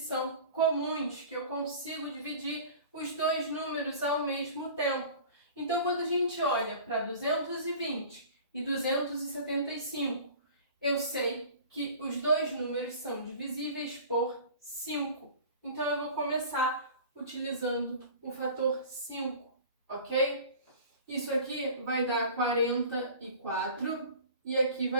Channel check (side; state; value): both; inverted; correlation -0.41